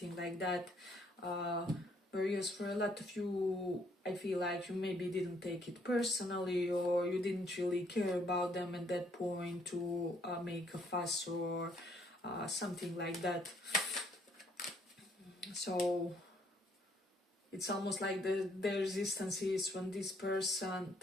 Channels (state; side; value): normal; both; correlation 0.67